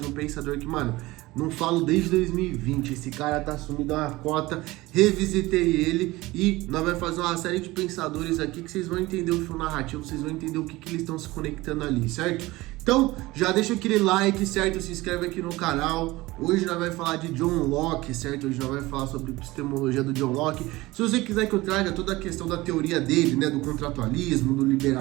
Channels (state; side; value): quieter; left; 19.8 dB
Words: um pensador que, mano, não falo desde 2020, esse cara tá sumido a uma cota, revisitei ele e nós vamos fazer uma série de pensadores aqui que vocês vão entender o fio narrativo, vocês vão entender o que eles estão se conectando ali, certo? Então, já deixa aquele like, certo? Se inscreve aqui no canal. Hoje nós vamos falar de John Locke, certo? Hoje nós vamos falar sobre epistemologia do John Locke. Se você quiser que eu traga toda a questão da teoria dele, né? Do contratualismo, do